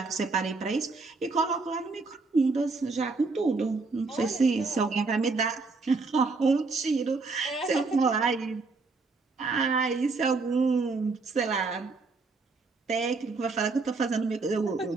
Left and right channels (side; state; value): left; quieter; 4.0 dB